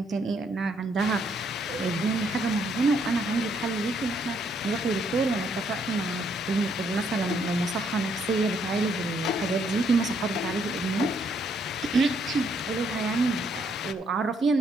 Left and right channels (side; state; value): both; normal; correlation 0.71